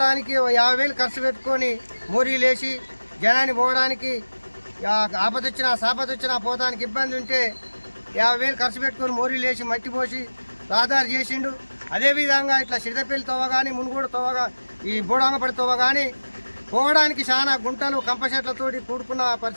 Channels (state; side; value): inverted; both; correlation -1.00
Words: 50,000 ఖర్చు పెట్టుకొని మోరీలేసి జనాన్ని పోవడానికి ఆపదొచ్చినా సాపదొచ్చినా పోవడానికి ఇబ్బంది ఉంటే 50,000 ఖర్చు పెట్టుకొని మోరీలేసి మట్టి పోసి రహదారి చేసిండు. అదేవిధంగా ఇట్లా సిరిదపల్లి తోవ కానీ మునుగోడు తోవ ఈ బోడంగపడి తోవ కానీ పోవడానికి చాలా గుంటలు కంపచెట్లతోటి కూడుకున్న